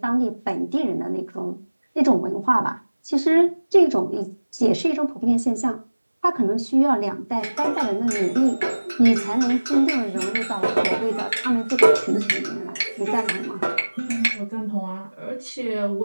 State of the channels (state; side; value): inverted; both; correlation -1.00